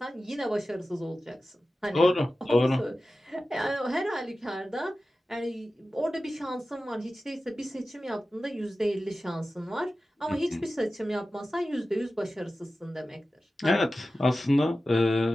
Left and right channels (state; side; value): normal; both; correlation 0.94